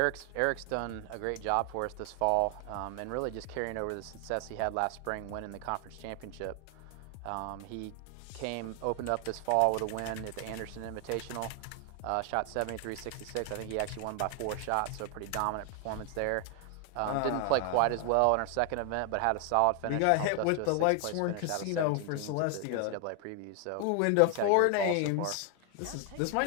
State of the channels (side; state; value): both; different; correlation 0.00